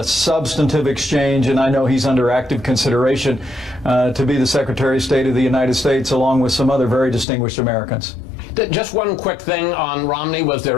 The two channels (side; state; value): right; drops out; at 7.2 s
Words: substantive exchange, and I know he's under active consideration to be the Secretary of State of the United States, along with some other very distinguished Americans. Just one quick thing on Romney. Was